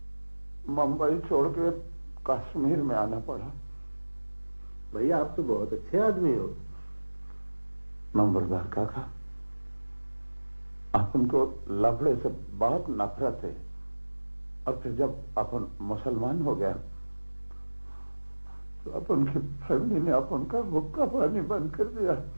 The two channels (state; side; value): inverted; both; correlation -1.00